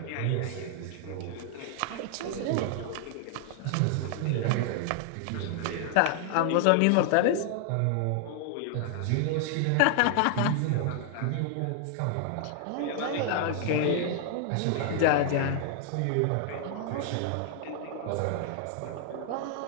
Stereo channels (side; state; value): both; different; correlation 0.00